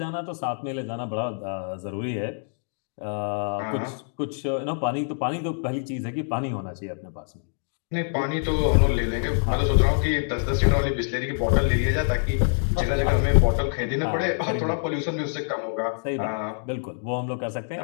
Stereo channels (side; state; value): right; silent; digital silence